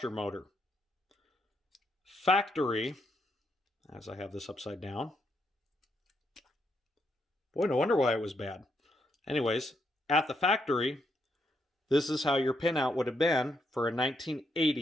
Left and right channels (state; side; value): normal; both; correlation 0.78